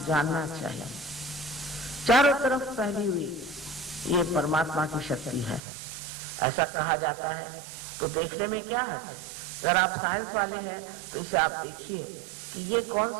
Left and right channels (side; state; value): left; drops out; at 5.6 s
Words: जानना चाहिए। चारों तरफ फैली हुई ये परमात्मा की शक्ति है, ऐसा कहा जाता है। तो देखने में क्या है? अगर आप साइंस वाले हैं तो इसे आप देखिए कि ये कौन